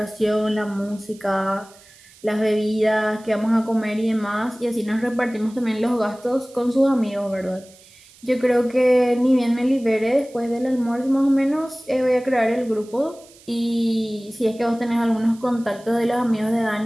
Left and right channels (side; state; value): right; noise; hiss, 25 dB below the sound